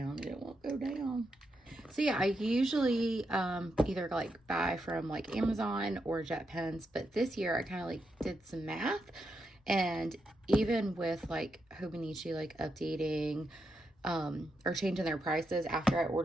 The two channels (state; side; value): normal; both; correlation 0.84